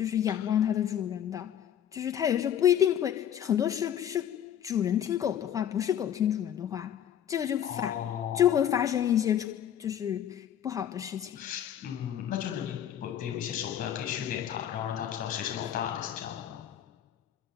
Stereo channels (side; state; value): right; quieter; 10.0 dB